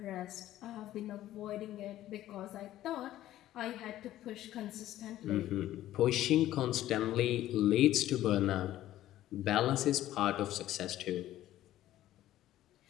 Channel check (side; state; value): right; quieter; 13.8 dB